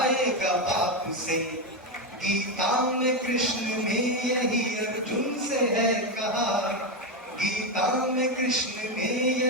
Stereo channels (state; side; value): normal; both; correlation 0.10